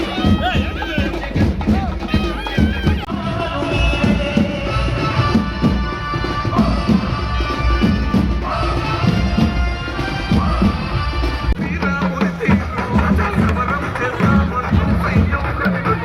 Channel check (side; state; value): both; identical; correlation 1.00